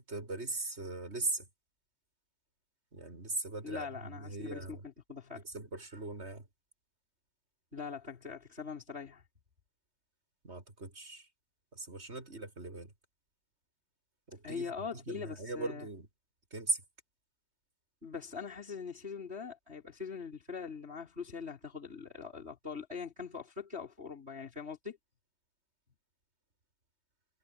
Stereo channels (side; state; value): left; late; 3.2 ms